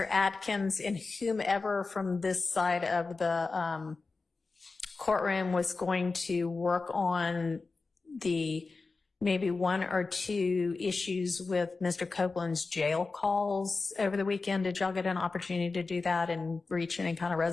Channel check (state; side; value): quieter; right; 4.0 dB